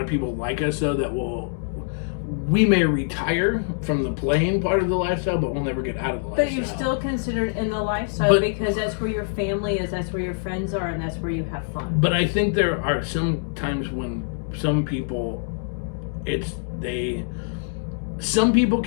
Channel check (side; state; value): right; silent; digital silence